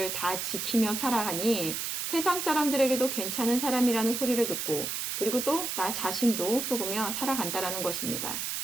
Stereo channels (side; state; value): right; noise; hiss, 3 dB below the sound